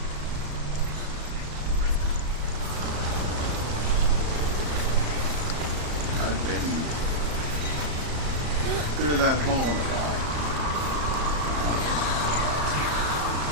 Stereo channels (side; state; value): left; late; 34 ms